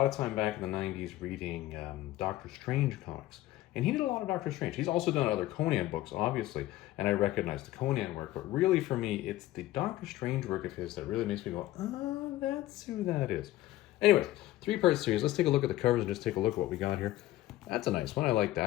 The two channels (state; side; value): quieter; right; 15.6 dB